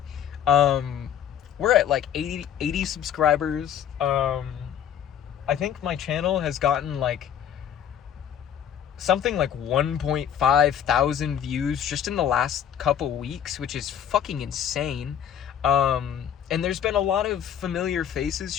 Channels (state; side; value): quieter; right; 9.3 dB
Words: We're at like 80 subscribers. I think my channel has gotten like something like 1.5 thousand views just in the last couple weeks, which is fucking insane. And there's been a lot of familiar faces